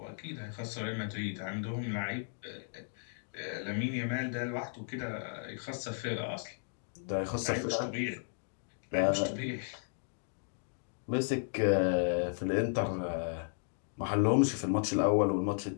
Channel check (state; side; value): silent; right; digital silence